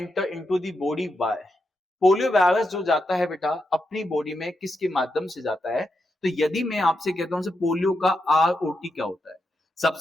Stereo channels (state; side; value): normal; both; correlation 0.85